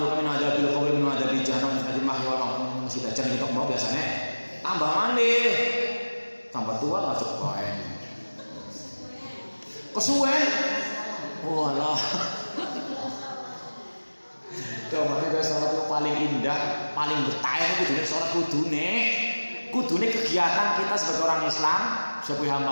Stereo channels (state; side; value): inverted; both; correlation -1.00